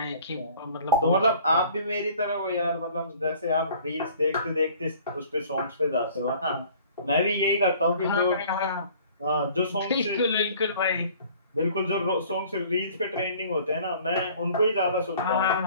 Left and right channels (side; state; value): both; inverted; correlation -0.51